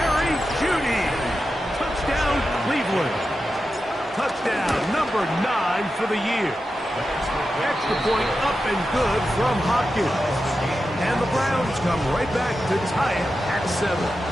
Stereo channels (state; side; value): normal; both; correlation 0.91